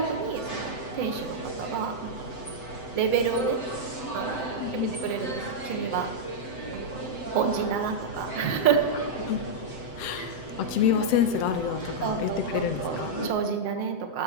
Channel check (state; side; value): late; right; 7.8 ms